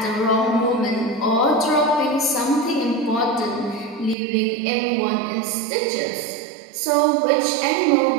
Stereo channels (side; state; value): left; drops out; at 4.2 s